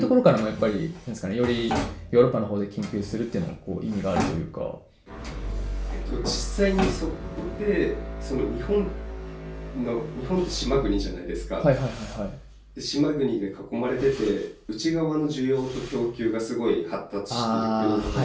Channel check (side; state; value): both; identical; correlation 1.00